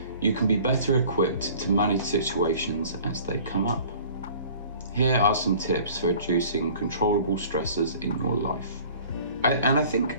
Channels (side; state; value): both; inverted; correlation -0.48